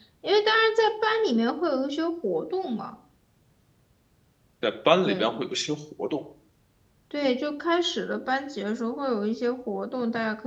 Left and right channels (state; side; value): identical; both; correlation 1.00